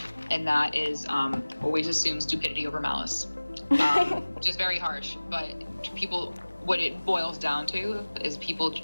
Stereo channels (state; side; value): inverted; both; correlation -1.00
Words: and that is always assume stupidity over malice. Which is very harsh, but people, what it boils down to is people